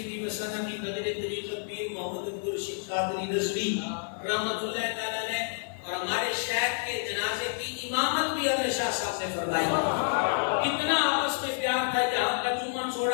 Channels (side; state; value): right; silent; digital silence